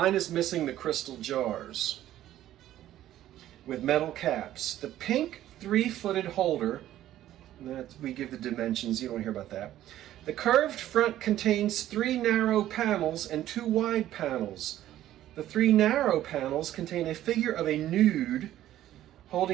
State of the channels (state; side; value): quieter; left; 13.0 dB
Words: is missing the crystal jars with metal caps. The pink 3-footed holder, that we give the dimensions, you don't hear about that. The curved front contains 3 narrow panels and 2 wide panels. The 3 narrow panels contain a figure of a nude